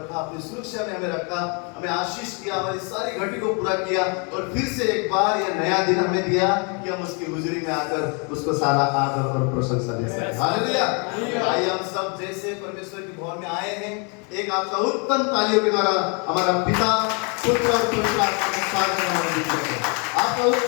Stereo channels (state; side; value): quieter; right; 35.1 dB